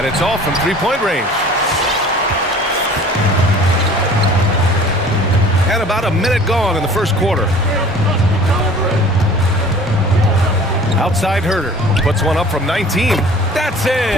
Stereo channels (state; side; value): normal; both; correlation 0.47